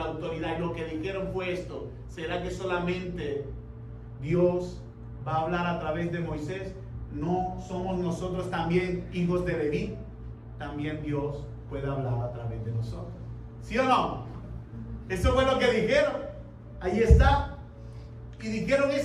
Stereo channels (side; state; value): both; identical; correlation 1.00